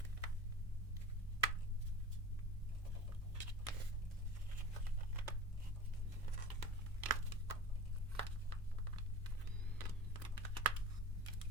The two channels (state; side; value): normal; both; correlation 0.37